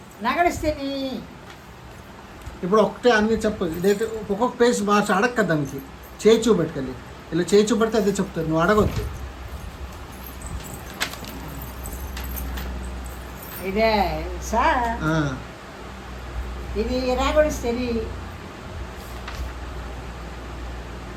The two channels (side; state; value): both; identical; correlation 1.00